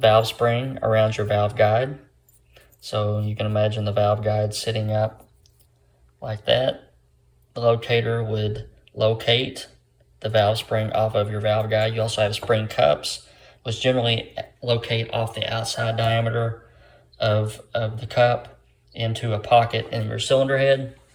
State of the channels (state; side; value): identical; both; correlation 1.00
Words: spring around your valve guide. So you can imagine the valve guide sitting up like that. The locator would locate the valve spring off of your valve guide. You also have spring cups, which generally locate off the outside diameter of the cup into a pocket in your cylinder head.